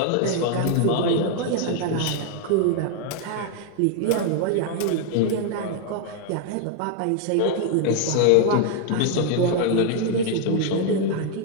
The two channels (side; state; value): both; different; correlation 0.00